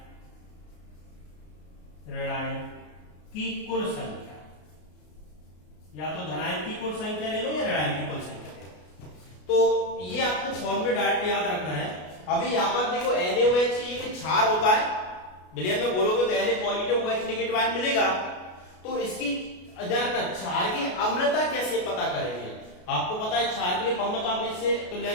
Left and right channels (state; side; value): late; right; 33 ms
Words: की कुल संख्या, या तो धनायन की कुल संख्या ले लो या ऋणायन की कुल संख्या ले लो। तो ये आपको फॉर्मूला डायरेक्ट याद रखना है। अभी यहां पर देखो NaOH एक क्षार होता है, विलयन में बोलोगे तो Na positive OH negative ion मिलेगा। तो इसकी क्षार की अम्लता कैसे पता करेंगे, आपको पता है क्षार के लिए फॉर्मूला आप इससे